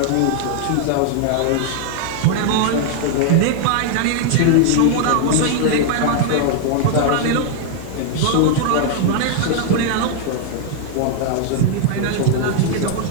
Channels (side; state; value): both; different; correlation 0.00